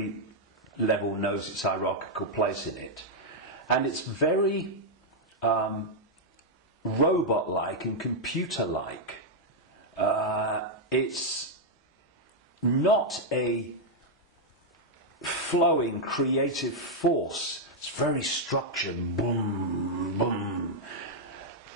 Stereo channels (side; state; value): both; normal; correlation -0.03